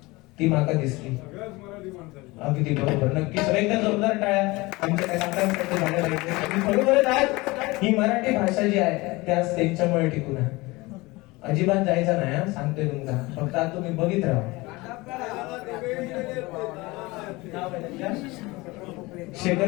ती माका दिसली. अगदी बरोबर. नक्की सगळ्यांना जोरदार टाळ्या. बरोबर आज ही मराठी भाषा जी आहे त्याच त्यांच्यामुळे टिकून आहे. अजिबात जायचा नाही सांगते तुमका. फक्त आता तुम्ही बघित राहा.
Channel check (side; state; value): right; quieter; 22.4 dB